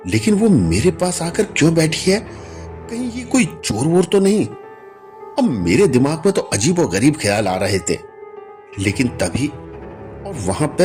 लेकिन वो मेरे पास आकर क्यों बैठी है, कहीं ये कोई चोर वोर तो नहीं। अब मेरे दिमाग में तो अजीब और गरीब ख्याल आ रहे थे। लेकिन तभी और वहां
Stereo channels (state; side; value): identical; both; correlation 1.00